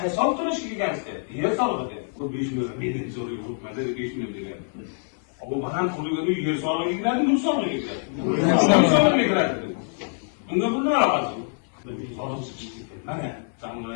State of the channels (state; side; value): silent; right; 62 dB below the other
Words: olib to'lashga kelgansiz? Yer solig'i deyapti. Bu 5 million menga zo'rga uribmadi, 5 million degan. Bu baland qurilgan yer solig'iga kiradi, mulk solig'iga kiradi. Mulk solig'iga kiradi. Bunga bunday aloqasi yo'q. Mana